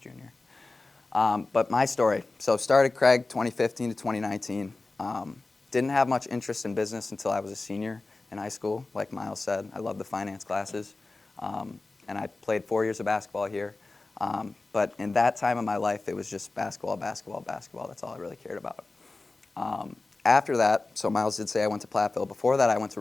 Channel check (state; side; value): quieter; right; 3.4 dB